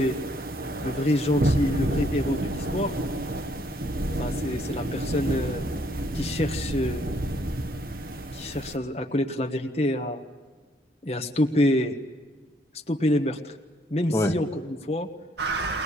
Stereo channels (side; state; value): both; normal; correlation 0.68